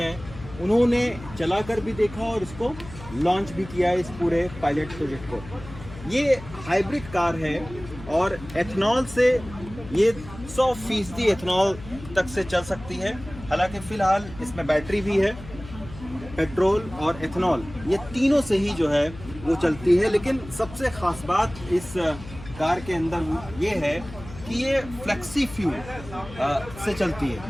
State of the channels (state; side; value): noise; left; hum, 15 dB below the sound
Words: उन्होंने चलाकर भी देखा और इसको लॉन्च भी किया है, इस पूरे पायलट प्रोजेक्ट को। ये हाइब्रिड कार है और एथनॉल से ये 100% एथनॉल तक से चल सकती है। हालांकि फ़िलहाल इसमें बैटरी भी है, पेट्रोल और एथनॉल ये तीनों से ही जो है वो चलती है। लेकिन सबसे ख़ास बात इस कार के अंदर ये है कि ये फ्लेक्सी फ्यूल से चलती